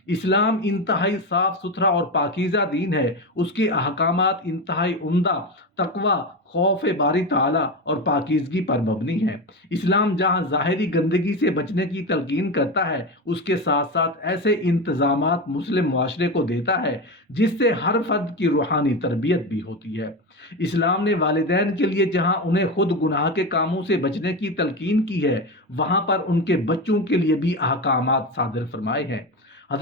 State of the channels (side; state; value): both; normal; correlation 0.19